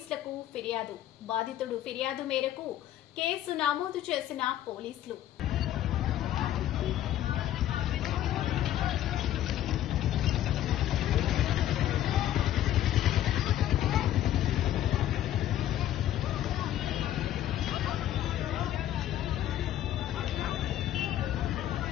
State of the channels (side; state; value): right; quieter; 12.3 dB